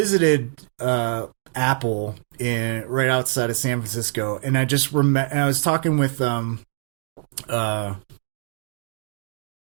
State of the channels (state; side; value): silent; left; digital silence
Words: Apple right outside of San Francisco, and I just remember I was talking with